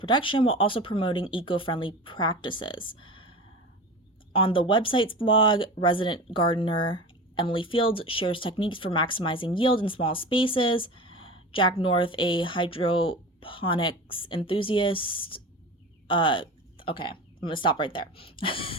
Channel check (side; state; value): both; normal; correlation 0.31